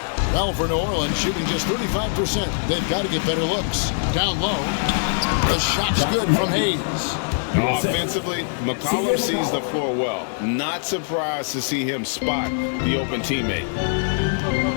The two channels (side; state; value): right; silent; digital silence